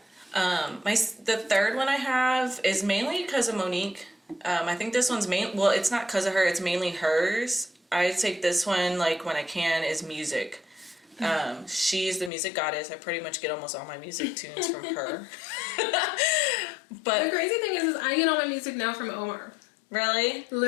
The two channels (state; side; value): drops out; right; at 12.3 s